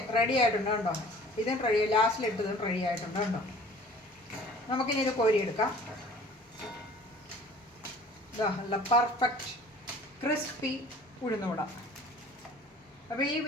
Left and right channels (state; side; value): normal; both; correlation 0.48